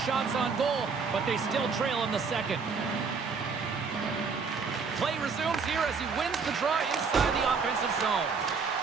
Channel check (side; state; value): left; quieter; 5.2 dB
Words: shots on goal, but they still trail in the second. Play resumes here as he wins the draw inside the offensive zone.